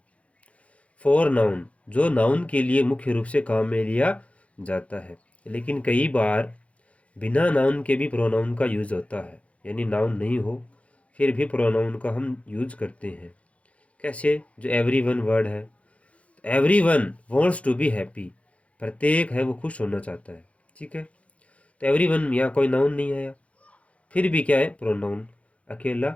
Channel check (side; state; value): right; late; 0.064 ms